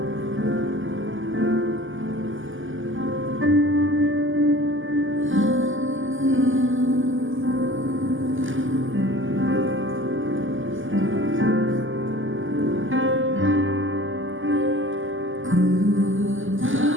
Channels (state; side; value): late; left; 0.58 ms